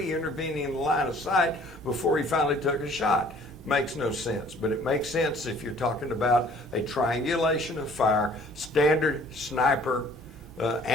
intervening in the line of sight before he finally took a shot. Makes no sense, but it makes sense if you're talking about a triangulation of fire, standard sniper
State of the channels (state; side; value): normal; both; correlation 0.55